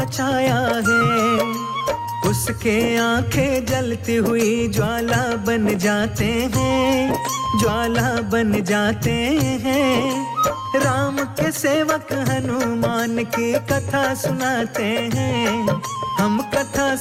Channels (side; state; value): both; identical; correlation 1.00